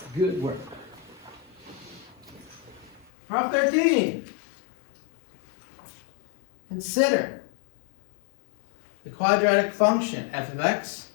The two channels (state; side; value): drops out; right; at 3.1 s